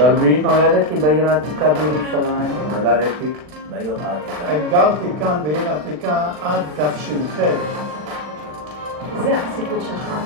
נולדתי בעיר העתיקה בירושלים. נולדתי בעיר העתיקה. גרתי כאן בעיר העתיקה עד תש"ח. זה הסיפור שלך,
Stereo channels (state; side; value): late; left; 40 ms